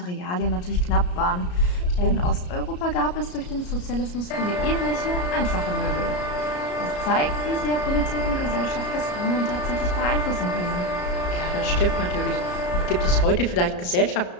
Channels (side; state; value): right; late; 33 ms